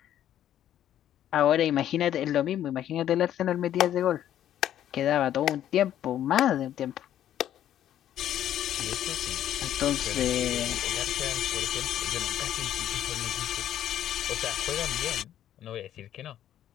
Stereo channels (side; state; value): right; quieter; 11.3 dB